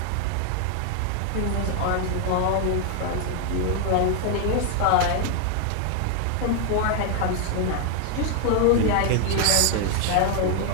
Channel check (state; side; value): different; both; correlation 0.00